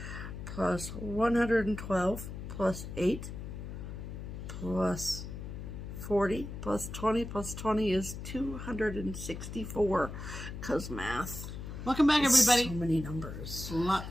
plus 112 plus 8 plus 40 plus 20 is 264. Because math. Welcome back, everybody. So many numbers.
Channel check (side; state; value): left; noise; hum, 8 dB below the sound